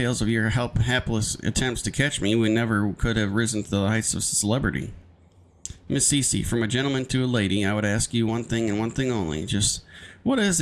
of your hapless attempts to catch me, we never could have risen to the heights of celebrity. Miss Cece, from a gentleman to a lady, I would ask you one thing and one thing only. Just what is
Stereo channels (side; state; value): both; identical; correlation 1.00